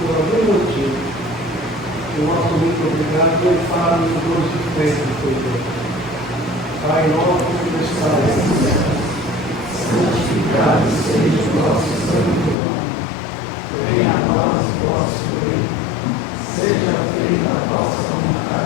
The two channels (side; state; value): right; drops out; at 12.6 s